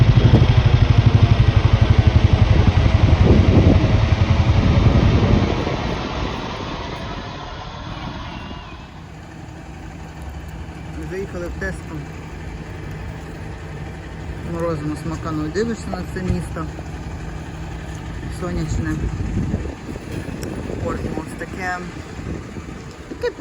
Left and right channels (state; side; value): identical; both; correlation 1.00